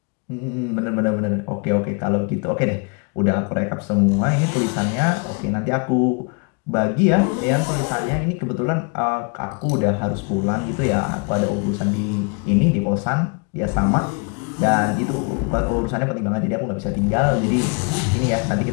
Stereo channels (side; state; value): right; quieter; 35.1 dB